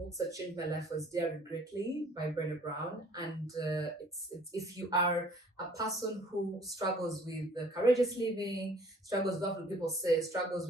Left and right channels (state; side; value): normal; both; correlation 0.55